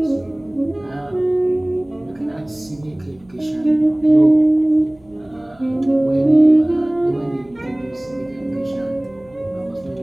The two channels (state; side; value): noise; right; hum, 30 dB below the sound